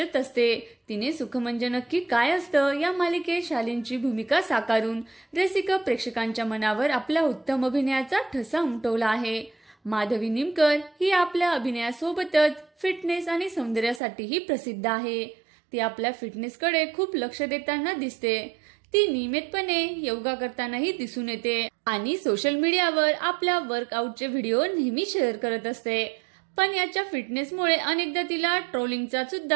असते. तिने सुख म्हणजे नक्की काय असतं या मालिकेत शालीनची भूमिका साकारून रसिक प्रेक्षकांच्या मनावर आपल्या उत्तम अभिनयाचा ठसा उमटवला आहे. माधवी निमकर ही आपल्या अभिनयासोबतच फिटनेस आणि सौंदर्यासाठीही प्रसिद्ध आहे. ती आपल्या फिटनेसकडे खूप लक्ष देताना दिसते. ती नियमितपणे योगा करतानाही दिसून येते आणि सोशल मीडियावर आपल्या वर्कआउटचे व्हिडिओ नेहमी शेअर करत असते. पण याच्या फिटनेसमुळे अनेकदा तिला ट्रोलिंगचा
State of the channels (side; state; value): left; drops out; at 14.0 s